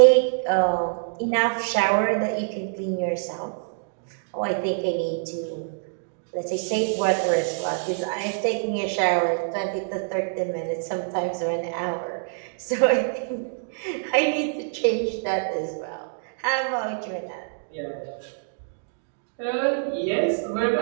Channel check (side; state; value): left; silent; digital silence